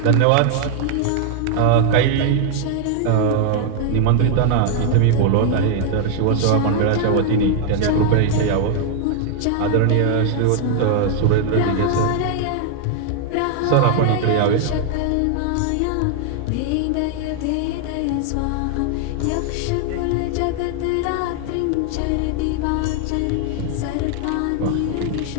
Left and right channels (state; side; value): different; both; correlation 0.00